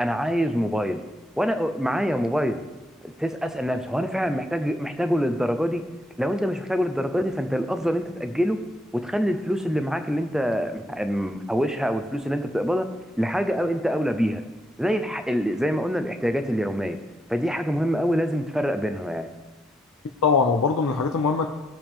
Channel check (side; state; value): both; normal; correlation 0.79